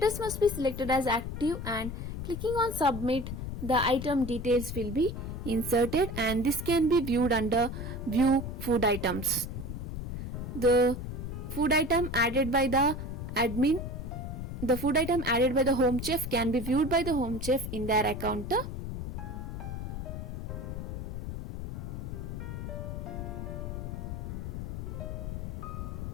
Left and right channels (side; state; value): left; noise; rumble, 6 dB below the sound